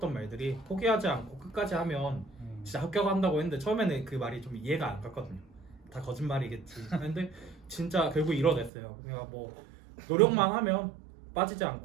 말들이 포기하지 않고 끝까지 하면 진짜 합격한다고 했는데 처음에는 그 말이 좀 이해가 안 갔거든요. 다 거짓말이겠지. 근데 진짜 결국 이뤄냈어요. 그냥 뭐 노력만 하면 빠지지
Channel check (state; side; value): drops out; left; at 8.7 s